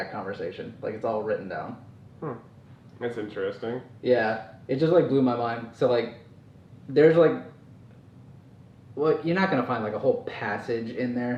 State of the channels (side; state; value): both; identical; correlation 1.00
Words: conversation. Like it's all written down. That's interesting. Yeah, it just like blew my mind. So like there's like well, you're not gonna find like a whole passage in